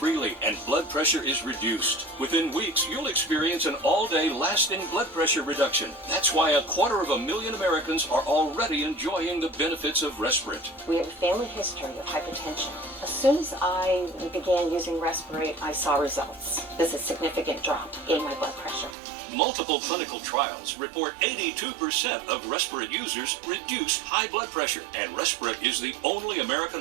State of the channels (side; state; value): left; drops out; at 18.9 s